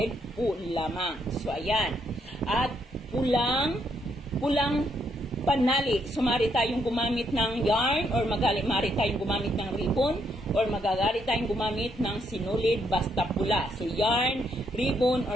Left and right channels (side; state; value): both; normal; correlation 0.75